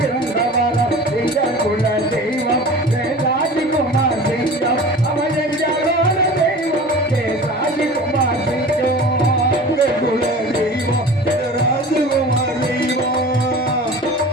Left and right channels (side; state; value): both; normal; correlation 0.38